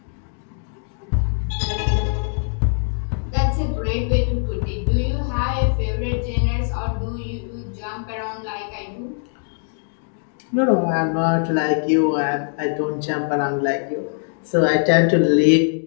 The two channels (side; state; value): right; silent; 64 dB below the other